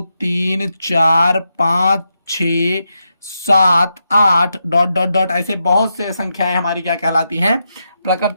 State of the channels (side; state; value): both; inverted; correlation -0.85